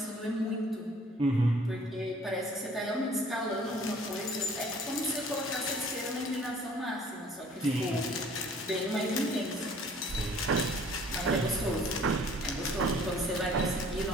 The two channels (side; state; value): both; normal; correlation 0.54